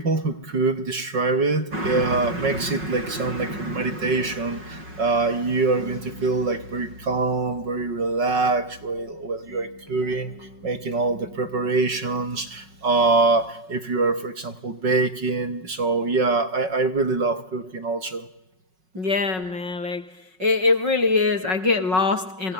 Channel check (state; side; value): late; left; 5.4 ms